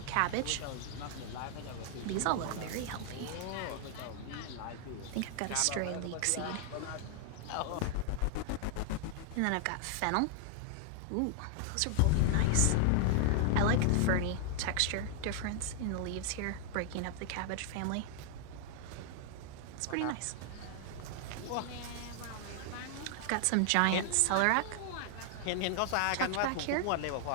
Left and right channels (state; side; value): different; both; correlation 0.00